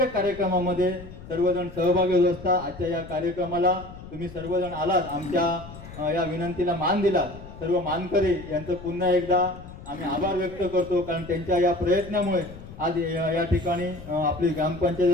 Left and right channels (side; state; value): left; noise; rumble, 15 dB below the sound